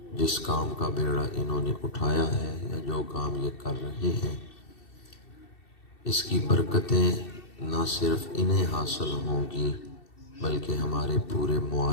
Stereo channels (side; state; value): right; late; 2.7 ms